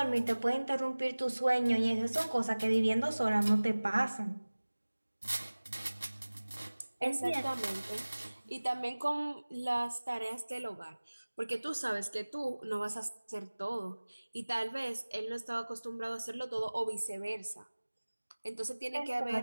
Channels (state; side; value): inverted; both; correlation -1.00